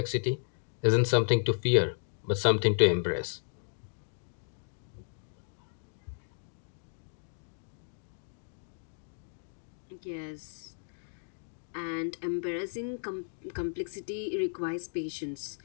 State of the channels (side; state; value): right; silent; digital silence